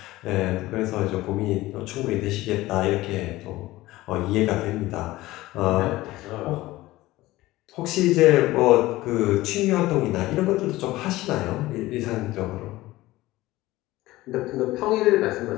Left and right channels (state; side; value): quieter; right; 17.9 dB